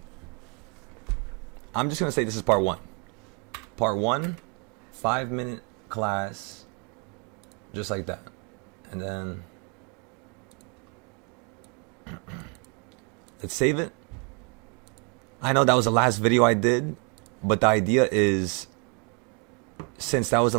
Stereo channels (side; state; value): left; quieter; 35.3 dB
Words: I'm just going to say this is part 1. Part 1, 5-minute class, just like that. And then let's save it. I know that was the last video I did, but the idea is, since that was the